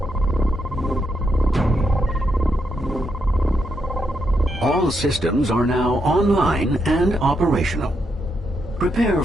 All systems are now online and operational. Prepare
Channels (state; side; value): normal; both; correlation 0.80